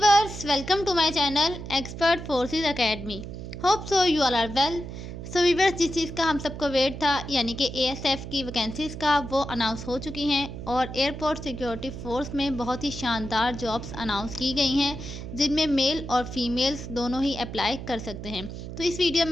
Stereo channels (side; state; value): right; noise; hum, 9 dB below the sound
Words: welcome to my channel expert forces academy. Hope so you all are well. So viewers, जिस चीज़ का हम सबको वेट था यानी कि एएसएफ की वैकेंसीज़ का, वो अनाउंस हो चुकी हैं और एयरपोर्ट सिक्योरिटी फोर्स में बहुत ही शानदार जॉब्स अनाउंस की गई हैं जिनमें मेल और फीमेल्स दोनों ही अप्लाई कर सकते हैं। तो इस वीडियो